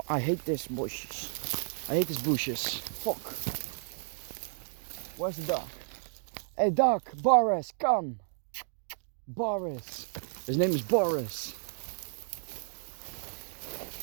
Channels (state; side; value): silent; left; digital silence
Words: I hate this bushes. I hate these bushes. Fuck. Where's the dog? Hey dog, Boris, come. Boris. His name is Boris.